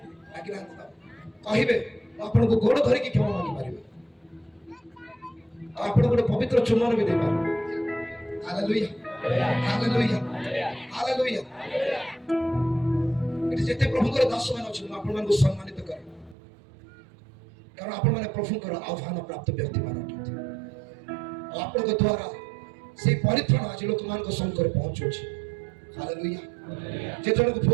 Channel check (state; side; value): drops out; left; at 16.4 s